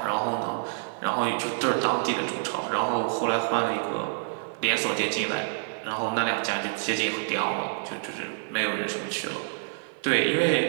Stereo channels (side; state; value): left; silent; digital silence